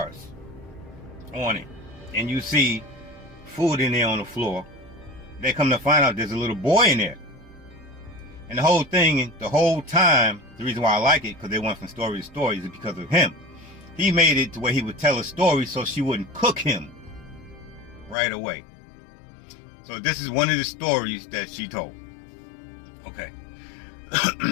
on it. And you see food in there on the floor. They come to find out there's a little boy in there. And the whole thing, the whole time, the reason why I like it, because they went from story to story, is because of him. He made it to where he would tell a story so she wouldn't cook him right away. So this is one of the stories that she told. Okay.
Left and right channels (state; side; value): drops out; right; at 18.2 s